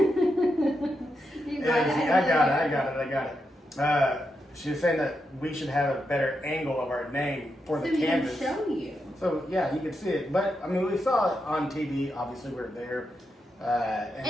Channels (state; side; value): normal; both; correlation 0.85